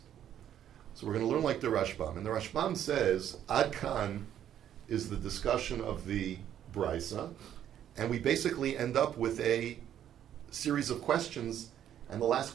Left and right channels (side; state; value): left; quieter; 10.5 dB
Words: So we're going to learn like the Rashbam. And the Rashbam says, Ad Kan is the discussion of the Brisa, and we basically end up with a series of questions, and the